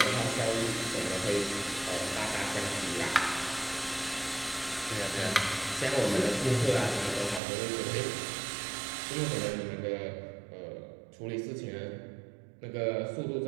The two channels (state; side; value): drops out; left; at 7.4 s